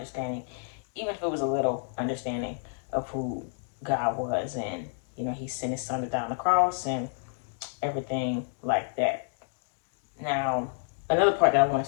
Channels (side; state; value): right; silent; digital silence